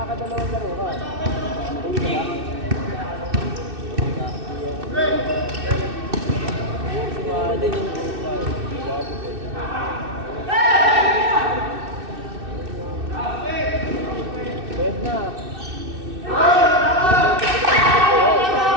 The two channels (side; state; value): left; late; 2.6 ms